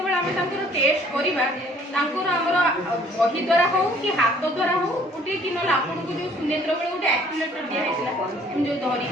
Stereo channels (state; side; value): normal; both; correlation 0.58